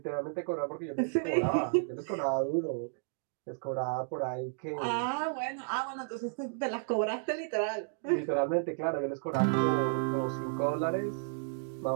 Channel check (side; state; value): left; silent; digital silence